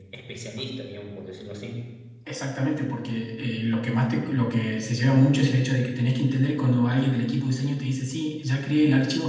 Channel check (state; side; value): identical; both; correlation 1.00